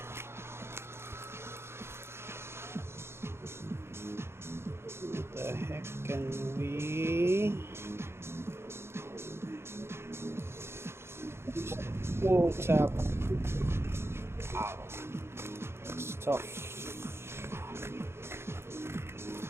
What the heck can we... Whoa, tap. Ow. It's tough.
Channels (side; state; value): left; late; 0.12 ms